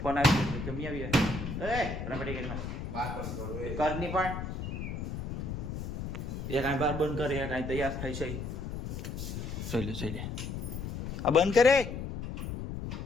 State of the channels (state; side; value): noise; left; rumble, 5 dB below the sound